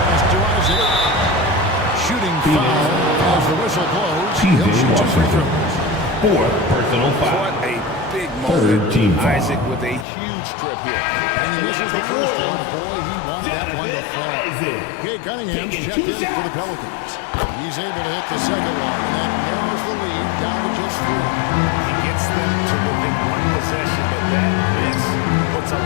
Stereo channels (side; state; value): right; drops out; at 10.1 s